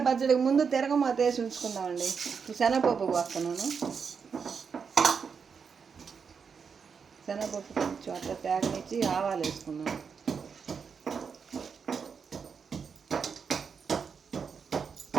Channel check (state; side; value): quieter; left; 6.1 dB